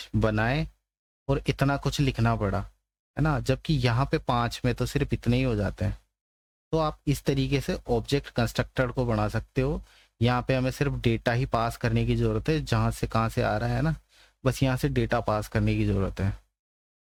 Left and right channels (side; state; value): both; identical; correlation 1.00